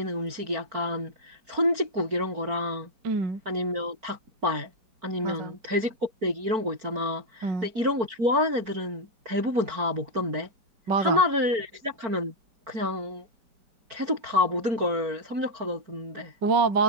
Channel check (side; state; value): left; late; 4.5 ms